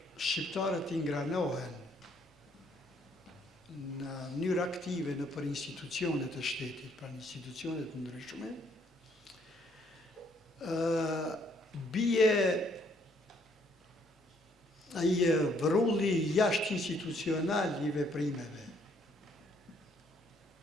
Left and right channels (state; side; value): normal; both; correlation 0.67